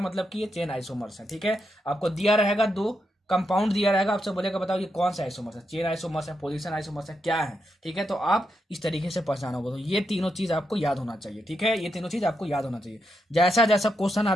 कि ये चेन आइसोमर्स है, ठीक है। आपको दिया रहेगा 2 कंपाउंड दिया रहेगा, आपसे बोलेगा बताओ ये कौन सा आइसोमर्स है, चेन आइसोमर्स है, पोजीशन आइसोमर्स है, क्या है, ठीक है। तो आप इस तरीके से पहचानोगे। तो ये तीनों चीज आपको याद होना चाहिए, ठीक है। ये तीनों चीज आपको याद होना चाहिए, जैसा जैसा क्वेश्चन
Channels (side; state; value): both; normal; correlation 0.83